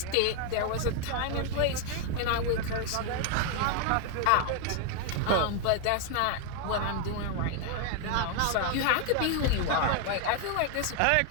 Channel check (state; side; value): different; both; correlation 0.00